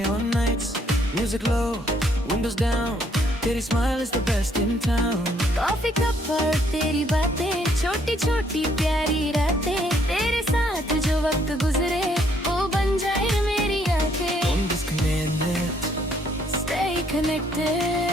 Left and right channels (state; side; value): normal; both; correlation 0.68